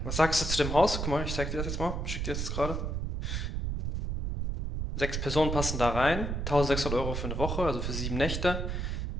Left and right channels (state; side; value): noise; right; rumble, 2 dB below the sound